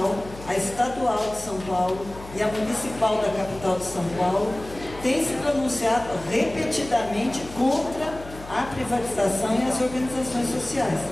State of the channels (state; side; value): noise; left; hum, 16 dB below the sound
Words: a estadual de São Paulo e a municipal da capital de São Paulo, têm se pronunciado repetidamente contra a privatização e as organizações sociais.